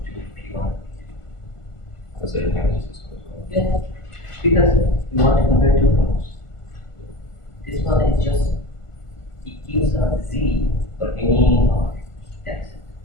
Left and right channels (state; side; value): late; right; 1.5 ms